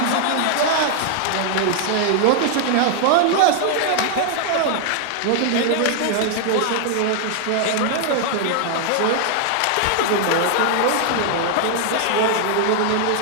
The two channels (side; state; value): both; different; correlation 0.00